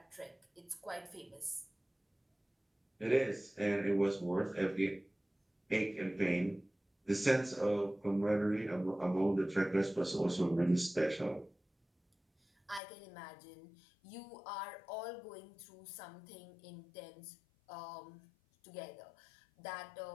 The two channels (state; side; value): drops out; right; at 12.8 s